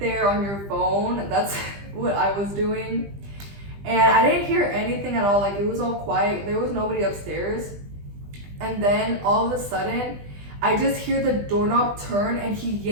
there on your phone, that's what I was doing. And I didn't hear anything at all, like it was all quiet, there was nobody upstairs. And then all of a sudden, I just hear the doorknob turn and he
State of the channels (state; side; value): late; left; 20 ms